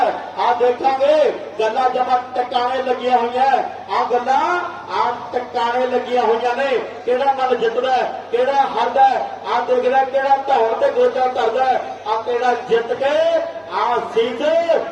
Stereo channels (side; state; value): both; identical; correlation 1.00